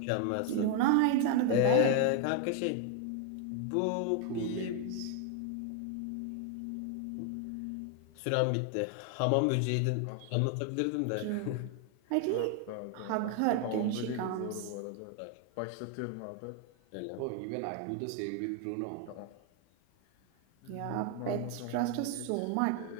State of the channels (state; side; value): different; both; correlation 0.01